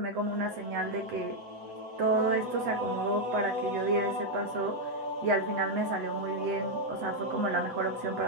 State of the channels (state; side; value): late; left; 8.0 ms